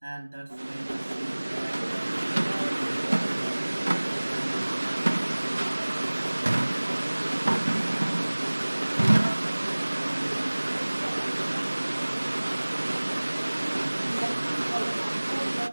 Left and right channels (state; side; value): inverted; both; correlation -1.00